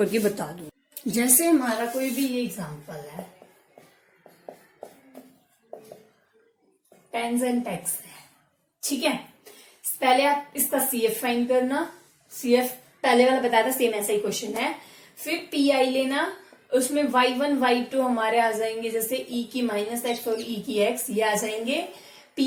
बता दूं। जैसे हमारा कोई भी ये एग्जांपल है, पेन्स एंड टैक्स है। ठीक है, पहले आप इसका CF फाइंड करना। CF पहले वाला बताया था, सेम ऐसा ही क्वेश्चन है। फिर PI लेना, उसमें y1 y2 हमारे आ जाएंगे, जैसे e की -x और e की x, ये आ जाएंगे।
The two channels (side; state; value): both; identical; correlation 1.00